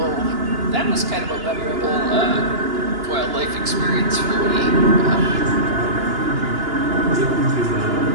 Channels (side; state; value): left; late; 2.9 ms